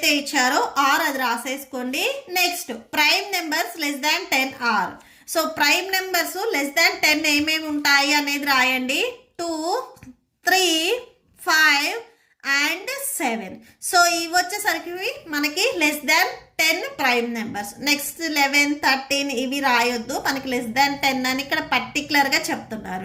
ఇచ్చారో ఆర్ అది రాసేసుకోండి. Next prime numbers less than 10 R. So prime numbers less than 10 ఏమేమి ఉంటాయి అనేది రాయండి. 2 3 5 and 7. సో ఇవి వచ్చేసరికి మనకి less than 10 prime numbers. Next 11 13 ఇవి రాయొద్దు, మనకి లెస్ దాన్ 10 అని ఇక్కడ పర్టికులర్గా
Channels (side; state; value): both; identical; correlation 1.00